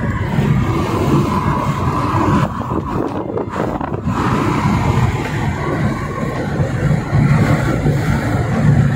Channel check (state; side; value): identical; both; correlation 1.00